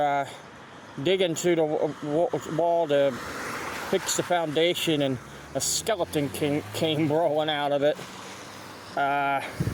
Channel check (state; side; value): identical; both; correlation 1.00